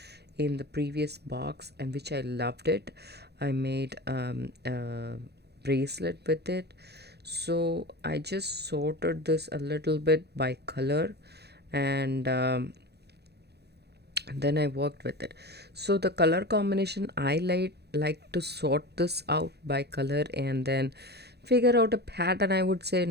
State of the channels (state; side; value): late; left; 0.48 ms